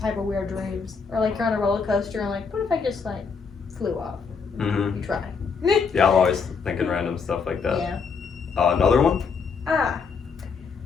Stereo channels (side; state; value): right; quieter; 5.4 dB